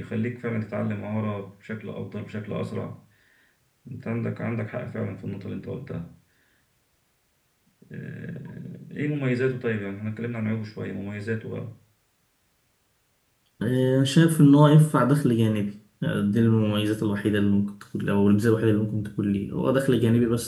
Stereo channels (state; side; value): identical; both; correlation 1.00